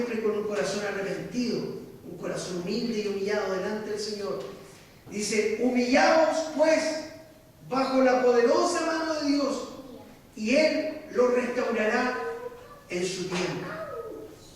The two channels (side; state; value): both; identical; correlation 1.00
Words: con un corazón arrepentido, un corazón humilde y humillado delante del Señor. Dice, humillaos pues bajo la poderosa mano de Dios y Él los restaurará en su tiempo.